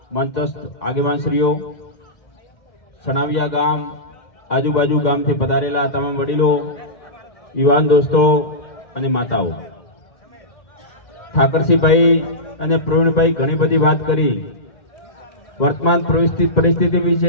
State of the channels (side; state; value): right; late; 2.1 ms